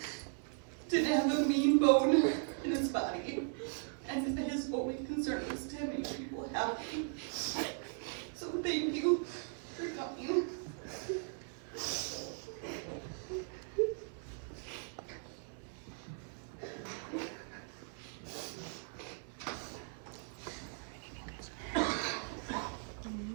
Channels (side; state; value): left; silent; 52 dB below the other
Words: didn't have a mean bone in his body. And his only concern was to make people happy. So thank you for coming.